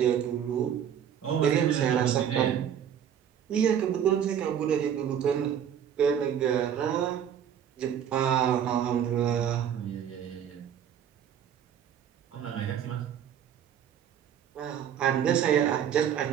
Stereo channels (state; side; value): quieter; left; 9.0 dB